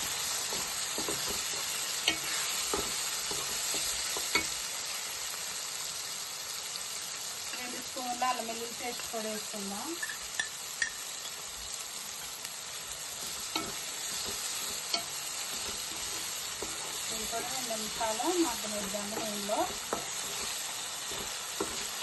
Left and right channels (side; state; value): both; identical; correlation 1.00